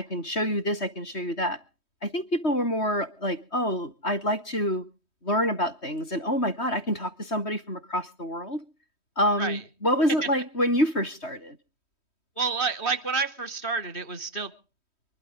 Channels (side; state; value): right; late; 3.1 ms